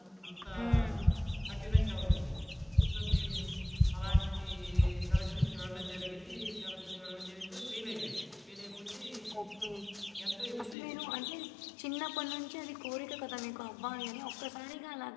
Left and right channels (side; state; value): right; drops out; at 10.8 s